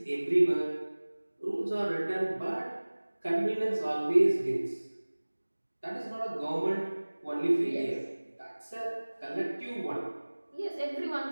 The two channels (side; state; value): both; inverted; correlation -1.00